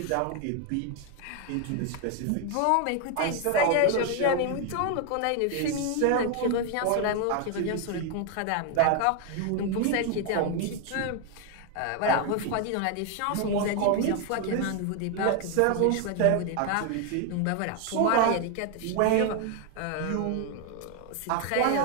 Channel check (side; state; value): both; different; correlation 0.01